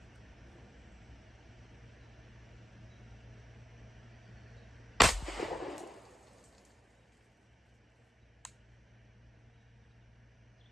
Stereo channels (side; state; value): both; normal; correlation 0.89